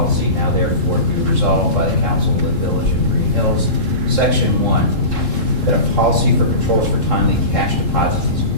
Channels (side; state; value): left; late; 3.7 ms